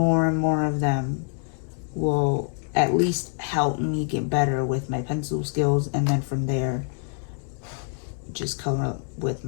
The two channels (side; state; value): right; silent; 61 dB below the other